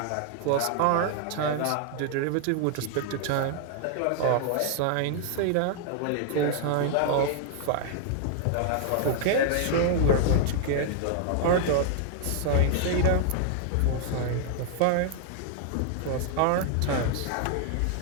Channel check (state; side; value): different; both; correlation 0.00